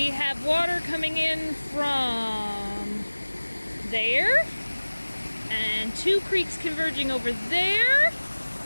have water coming in from there, and two creeks converging over there,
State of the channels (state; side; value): inverted; both; correlation -1.00